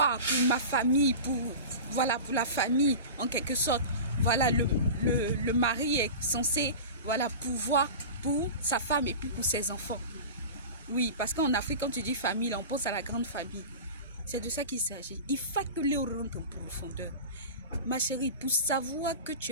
pour ma famille, pour la famille, en quelque sorte. Voilà, le mari est censé, voilà, pouvoir pour sa femme et puis pour ses enfants. Oui, parce qu'en Afrique, quand tu dis famille, là, on pense à la grande famille. C'est de ça qu'il s'agit. Il faut que Léo rentre en profondeur. Ma chérie, pour savoir que tu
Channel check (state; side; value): inverted; both; correlation -0.32